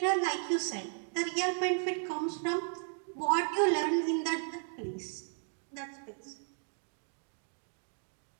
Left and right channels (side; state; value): left; silent; 55 dB below the other